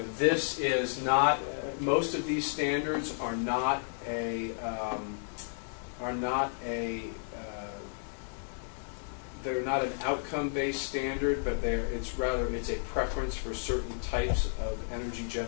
is not. Most of these standards are not they're not an outcome-based standard, but it's a preference for certain types of energy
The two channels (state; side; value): silent; right; digital silence